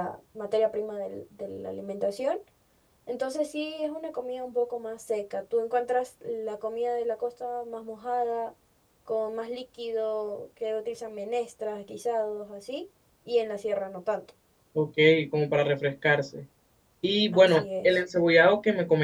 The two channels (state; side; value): identical; both; correlation 1.00